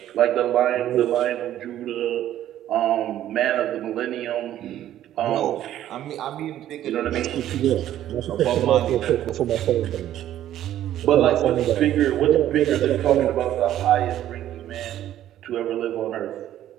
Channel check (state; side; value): quieter; left; 12.2 dB